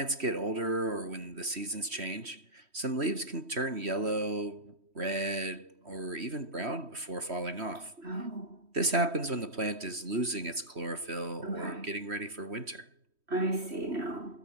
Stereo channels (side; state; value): left; late; 3.1 ms